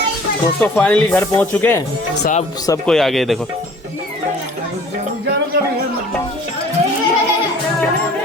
दोस्तों फाइनली घर पहुंच चुके हैं, साहब सब कोई आ गए। देखो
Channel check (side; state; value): both; normal; correlation 0.49